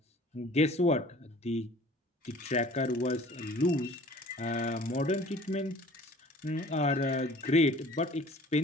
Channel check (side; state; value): both; normal; correlation 0.49